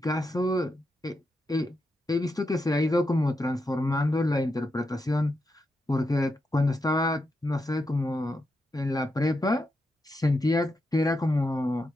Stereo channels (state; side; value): normal; both; correlation 0.85